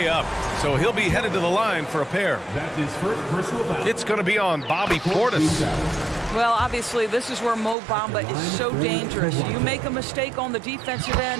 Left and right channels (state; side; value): drops out; left; at 7.8 s